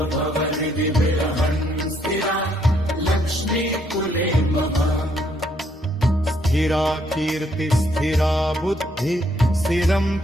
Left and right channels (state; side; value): normal; both; correlation 0.70